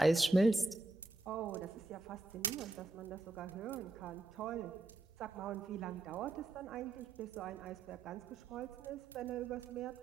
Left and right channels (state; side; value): quieter; left; 3.0 dB